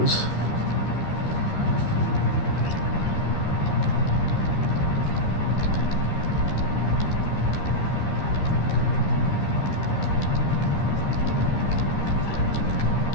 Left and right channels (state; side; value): late; right; 13 ms